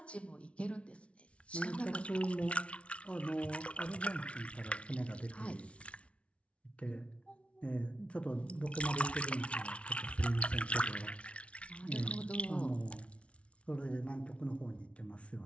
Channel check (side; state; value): right; late; 0.061 ms